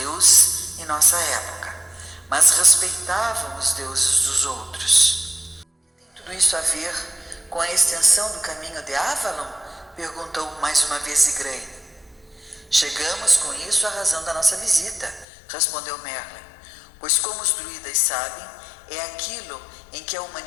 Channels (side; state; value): right; drops out; at 15.2 s